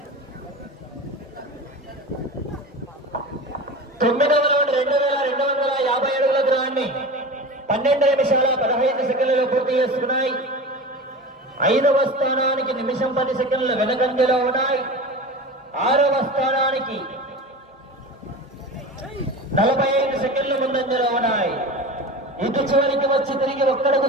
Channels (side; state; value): both; normal; correlation 0.31